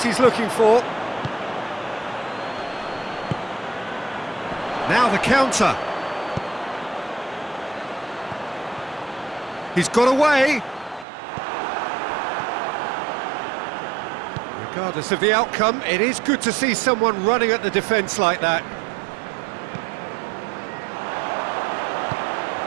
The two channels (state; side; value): drops out; left; at 11.1 s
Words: he's looking for. Now the counter. He's got away. Regardless of the outcome, it is good to see someone running at the defence like that.